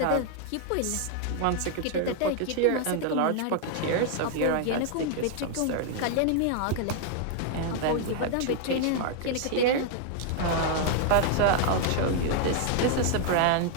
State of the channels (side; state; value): both; different; correlation 0.00